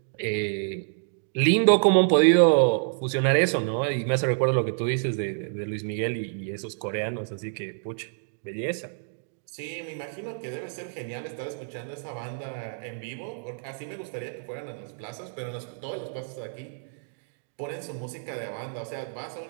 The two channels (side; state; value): left; silent; digital silence